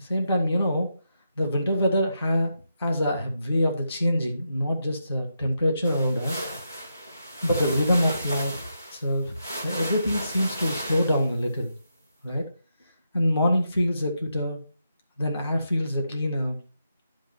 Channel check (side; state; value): both; inverted; correlation -0.83